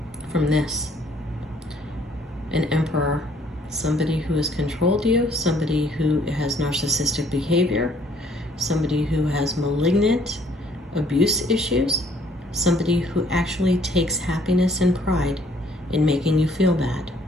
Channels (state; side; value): normal; both; correlation 0.62